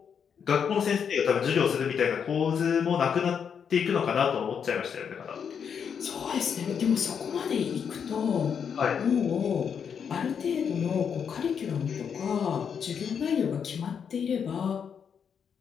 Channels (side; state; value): right; quieter; 7.2 dB